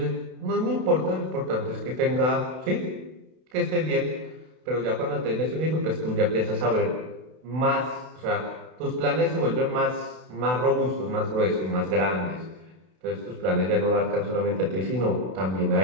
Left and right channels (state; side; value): late; left; 32 ms